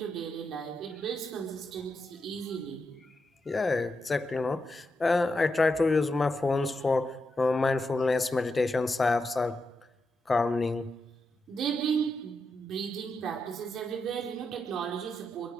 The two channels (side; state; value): both; normal; correlation 0.85